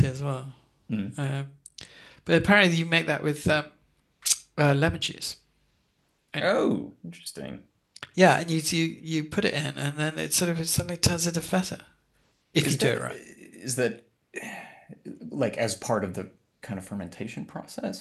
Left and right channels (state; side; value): identical; both; correlation 1.00